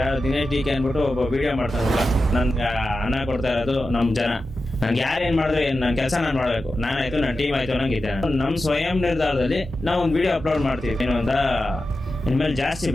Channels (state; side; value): normal; both; correlation 0.92